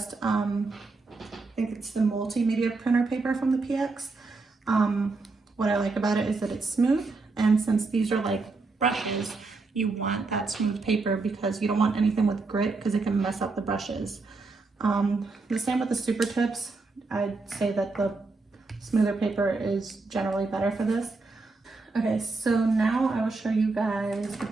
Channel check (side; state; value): left; quieter; 3.8 dB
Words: I think it's the multimedia printer paper from the PX. What I like about it is that it's smooth, and since these are like brushes, you want that smooth paper because you don't want anything with grit because it can mess up the brushes. The same with the super tips. I'd say that the smoother paper is generally better for this. Okay, so now I will show you guys the